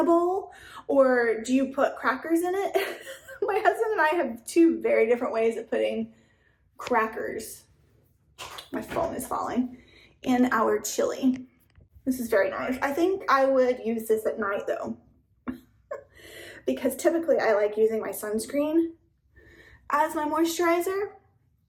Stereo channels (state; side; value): identical; both; correlation 1.00